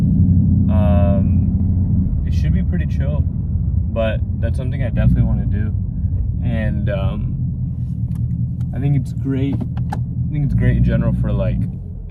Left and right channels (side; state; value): both; identical; correlation 1.00